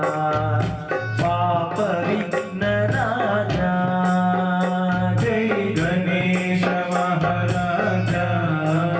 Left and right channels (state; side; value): identical; both; correlation 1.00